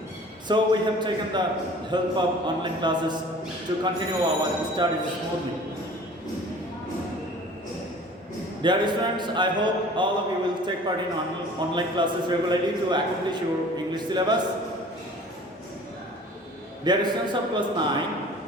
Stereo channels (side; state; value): both; normal; correlation 0.46